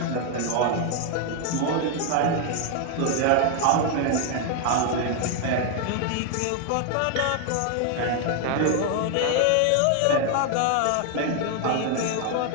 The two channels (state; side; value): different; both; correlation 0.00